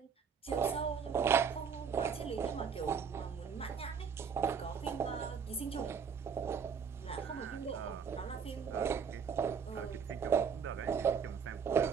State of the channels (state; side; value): quieter; left; 6.7 dB